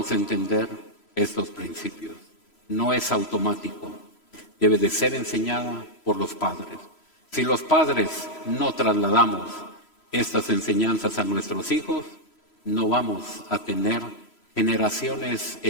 entender estos principios. No es automático, debe de ser enseñada por los padres. Si los padres no trasladamos estas enseñanzas a nuestros hijos, no vamos a tener generaciones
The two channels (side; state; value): right; late; 3.0 ms